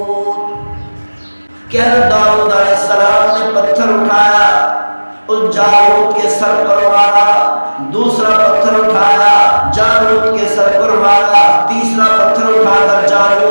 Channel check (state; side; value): inverted; both; correlation -1.00